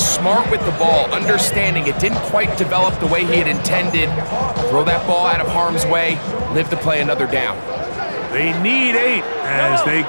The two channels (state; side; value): inverted; both; correlation -1.00